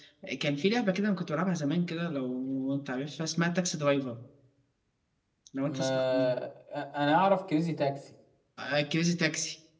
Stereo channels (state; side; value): identical; both; correlation 1.00